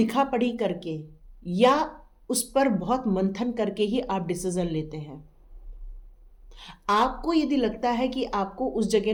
पढ़ी करके या उस पर बहुत मंथन करके ही आप डिसीजन लेते हैं। आपको यदि लगता है कि आपको उस जगह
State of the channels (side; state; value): both; identical; correlation 1.00